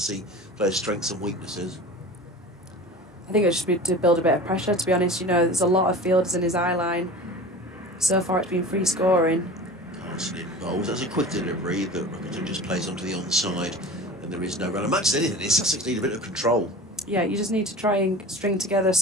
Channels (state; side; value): normal; both; correlation 0.36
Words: players' strengths and weaknesses. I think it's just be to build a bit of pressure, to be honest. You know, there's a lot of fielders in his eye line. So far it's been free scoring. Carson in bowls. That's a quick delivery, but Rickleton just plays onto the onside, and there is no run. And much as anything, Sussex need a bit of control. Yeah, you just need to try and string together